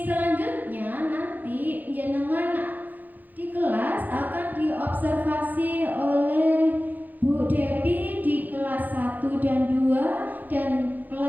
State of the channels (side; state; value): left; late; 0.084 ms